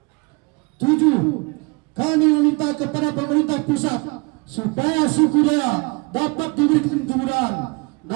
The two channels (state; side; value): quieter; left; 29.1 dB